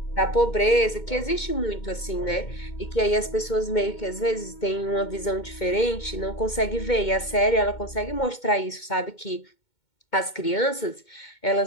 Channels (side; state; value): right; late; 2.2 ms